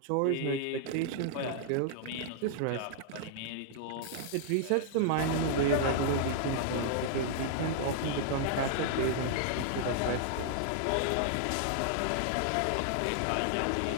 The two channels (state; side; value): different; both; correlation -0.01